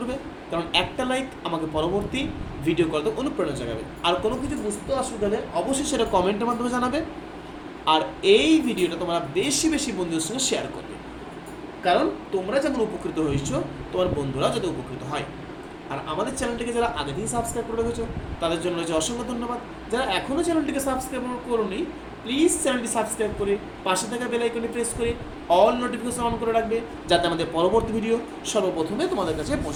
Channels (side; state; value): both; identical; correlation 1.00